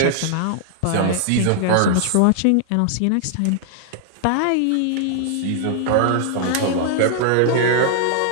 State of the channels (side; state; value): both; different; correlation -0.01